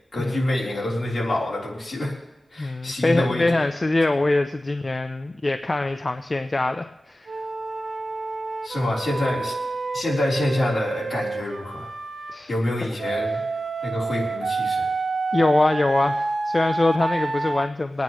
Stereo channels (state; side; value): normal; both; correlation 0.94